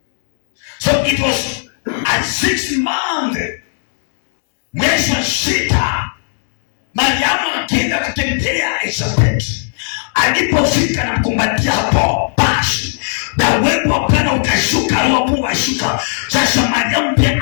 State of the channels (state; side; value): silent; right; digital silence